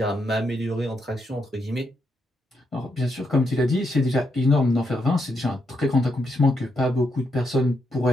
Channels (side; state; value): both; normal; correlation 0.79